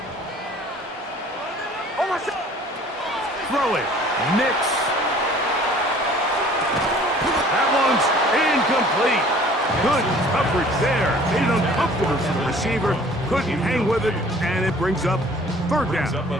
Throw it. Nix. That one's incomplete. Good coverage there. Made it uncomfortable for the receiver. Couldn't hang with it, and it brings up 3rd down. Brings up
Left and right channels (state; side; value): normal; both; correlation 0.52